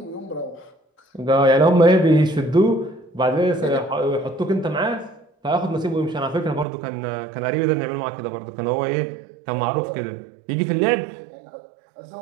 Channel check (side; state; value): left; drops out; at 6.7 s